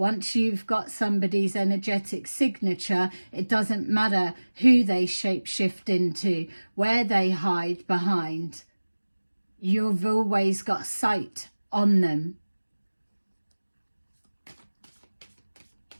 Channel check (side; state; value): both; inverted; correlation -1.00